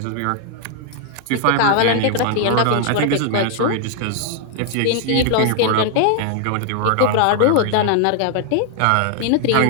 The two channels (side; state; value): both; different; correlation 0.00